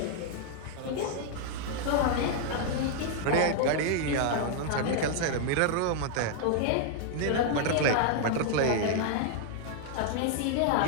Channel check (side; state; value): both; different; correlation 0.00